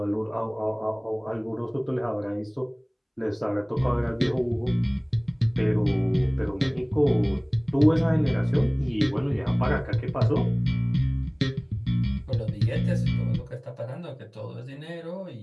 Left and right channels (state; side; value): identical; both; correlation 1.00